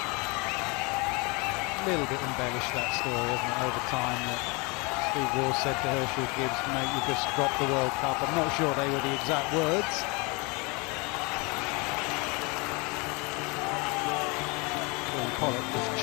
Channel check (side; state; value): right; quieter; 28.7 dB